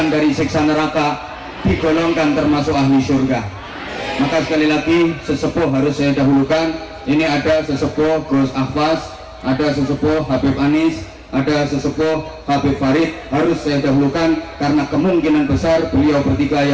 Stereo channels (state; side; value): identical; both; correlation 1.00